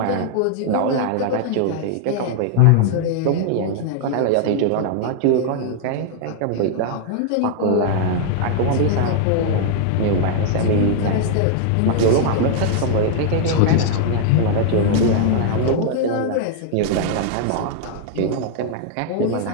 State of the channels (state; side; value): different; both; correlation 0.00